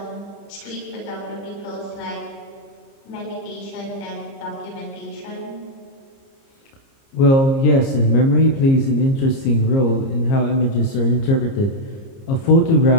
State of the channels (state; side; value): late; right; 30 ms